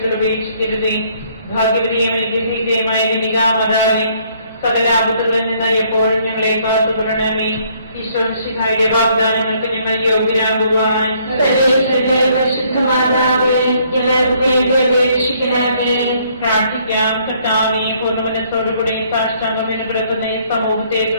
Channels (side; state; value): both; inverted; correlation -0.65